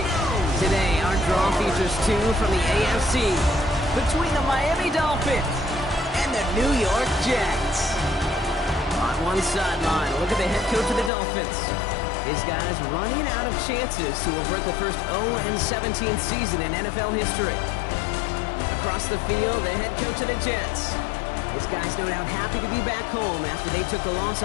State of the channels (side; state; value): right; drops out; at 11.1 s